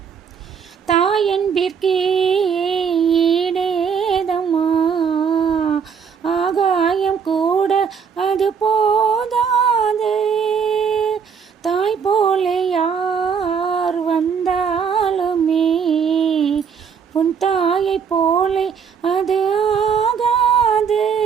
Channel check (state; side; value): quieter; left; 6.7 dB